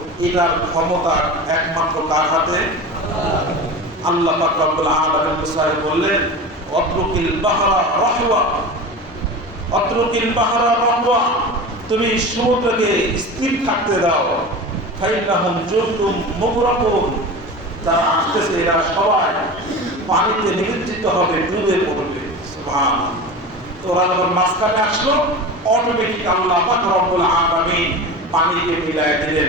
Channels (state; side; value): normal; both; correlation 0.31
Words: এটার ক্ষমতা একমাত্র কার হাতে? আল্লাহ পাক রব্বুল আলামিন মুসাকে বললেন অত্রুকিল বাহরা রাহওয়া, অত্রুকিল বাহরা রাহওয়া, তুমি সমুদ্রকে স্থির থাকতে দাও। ফাইন্নাহুম জুরতুম মুগরাকুন, যারা আসতেছে এরা সবাই পানিতে নিমজ্জিত হবে, ডুবে পড়বে। সুবহানাল্লাহ। তো ওরা যখন মাঝখানে আসলো, অটোমেটিক আল্লাহ পাক রব্বুল আলামিন পানিকে মিলাই দিলেন,